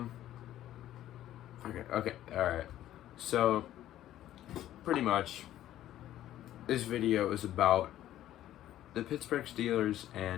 Okay, alright. So pretty much this video is about the Pittsburgh Steelers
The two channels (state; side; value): quieter; right; 12.9 dB